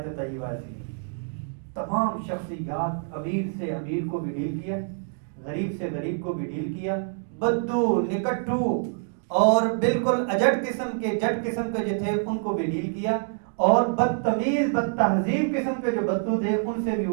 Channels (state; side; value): silent; left; 61 dB below the other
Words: طیبہ ایسی ہے, تمام شخصیات, امیر سے امیر کو بھی ڈیل کیا, غریب سے غریب کو بھی ڈیل کیا, بدو نکٹو اور بالکل اجٹ قسم کے جٹ قسم کے جو تھے ان کو بھی ڈیل کیا, اور بدتمیز بد تہذیب قسم کے جو بدو تھے ان سے بھی